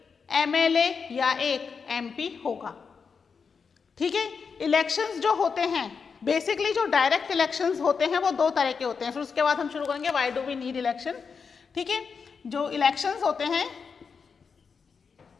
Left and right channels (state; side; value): quieter; right; 5.7 dB